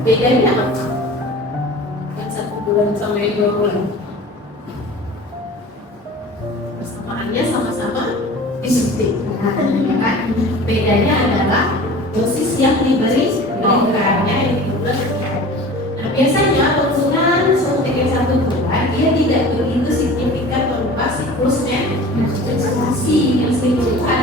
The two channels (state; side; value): normal; both; correlation 0.40